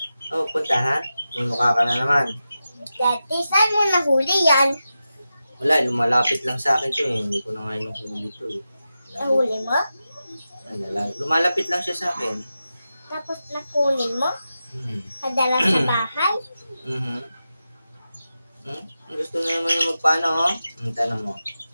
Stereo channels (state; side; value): inverted; both; correlation -0.92